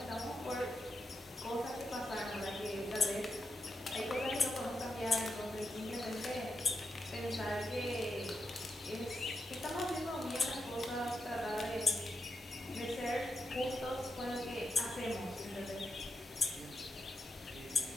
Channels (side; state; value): both; normal; correlation 0.86